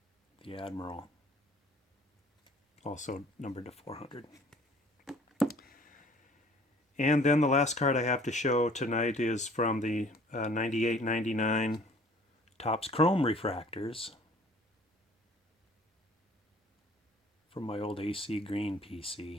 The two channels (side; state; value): both; normal; correlation 0.53